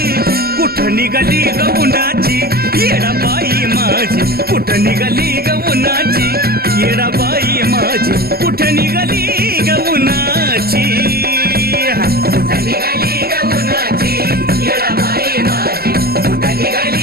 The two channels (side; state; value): left; late; 0.45 ms